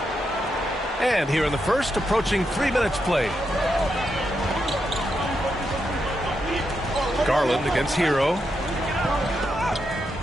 And here in the first, approaching 3 minutes played. Garland against Hero.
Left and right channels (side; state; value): both; normal; correlation 0.83